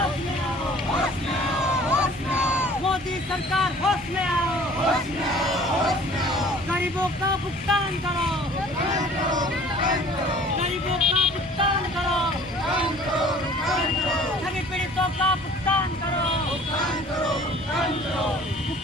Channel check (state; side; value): normal; both; correlation 0.50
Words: में आओ, मोदी सरकार होश में आओ, गरीबों का भुगतान करो, गरीबों का भुगतान करो, सभी पीड़ितों का भुगतान करो,